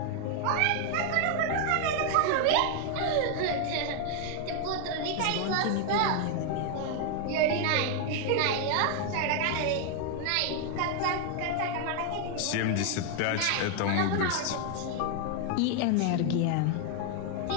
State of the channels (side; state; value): both; different; correlation 0.00